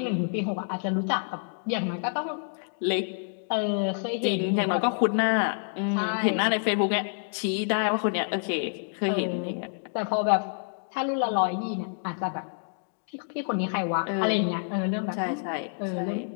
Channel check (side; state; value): right; silent; digital silence